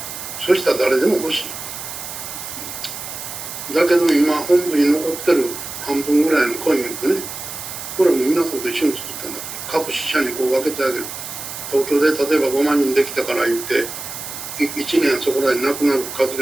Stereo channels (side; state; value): right; noise; hiss, 9 dB below the sound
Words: そしたら誰でも欲しい。だけど今本部に残ってる半分ぐらいのコインをね、これも皆さんと一緒に作ったんだから、各支社にこう分けてあげる。東京で例えば5万人できたから言って、1年そこらでなくなる数じ